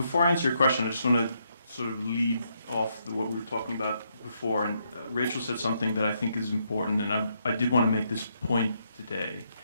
I answer your question, I just want to sort of lead off what we were talking about before. And Rachel said something that I think is important, and I did want to make this point today.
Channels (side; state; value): both; inverted; correlation -0.77